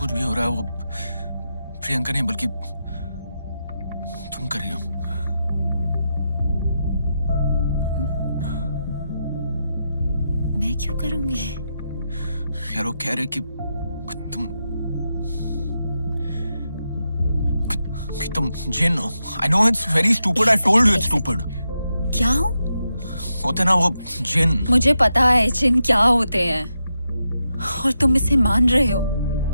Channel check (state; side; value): inverted; both; correlation -0.86